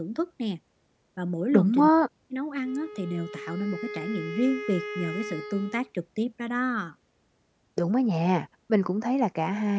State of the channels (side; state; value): both; identical; correlation 1.00